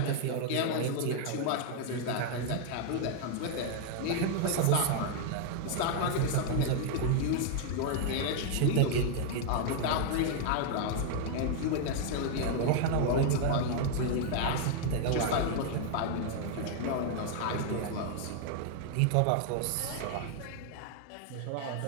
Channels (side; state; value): both; different; correlation 0.00